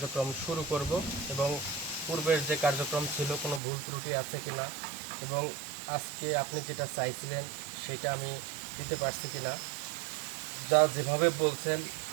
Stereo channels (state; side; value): drops out; left; at 3.6 s